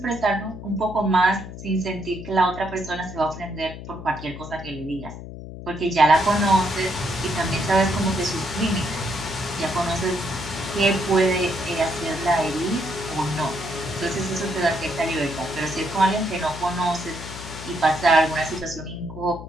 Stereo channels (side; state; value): left; noise; hum, 11 dB below the sound